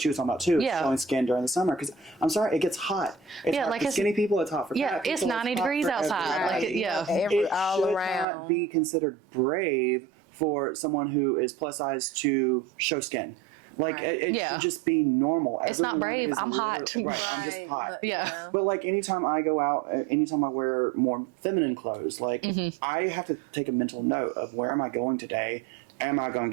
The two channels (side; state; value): left; drops out; at 8.2 s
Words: was talking about, too. Showing skin during the summer. Because, I'm sorry, it gets hot. It's hot for skinny people. It's hot for fat people. It's 90 degrees outside. It all around. Not be considered brave for someone who is plus size to show skin. Like, it should just be normal. It's not brave. I'm hot. I'm just hot. But, like, anytime I go out, anytime I wear more feminine clothes, like, I have to take a mental note of where am I going today? Am I going